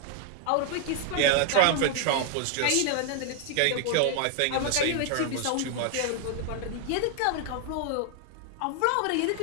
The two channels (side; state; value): both; different; correlation 0.00